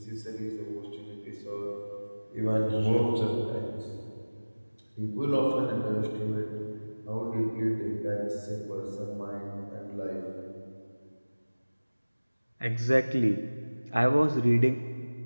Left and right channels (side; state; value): both; inverted; correlation -1.00